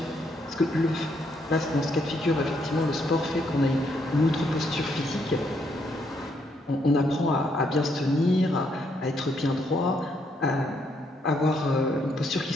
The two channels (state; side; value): normal; both; correlation 0.74